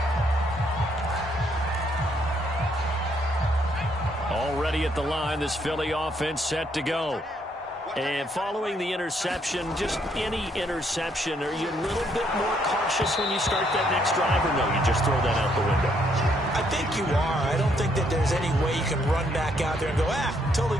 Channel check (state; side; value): normal; both; correlation 0.71